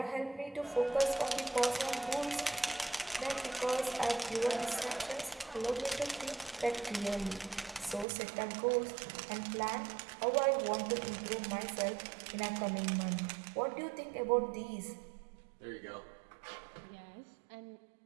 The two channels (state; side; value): drops out; left; at 8.1 s